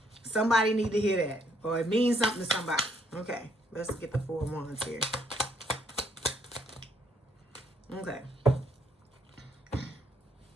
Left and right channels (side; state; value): both; normal; correlation 0.69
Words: somebody need to hear that, or it means something to somebody. Okay, let's get the Four of Wands here. Okay.